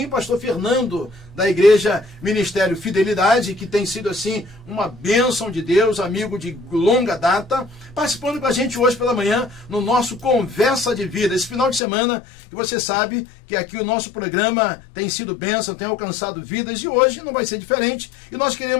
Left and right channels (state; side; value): drops out; right; at 11.8 s